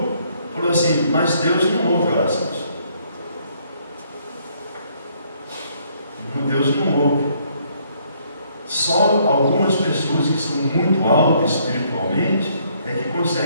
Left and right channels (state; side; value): inverted; both; correlation -0.67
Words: falou assim: mas Deus não ouve orações. Deus não ouve. Só algumas pessoas que são muito altas espiritualmente é que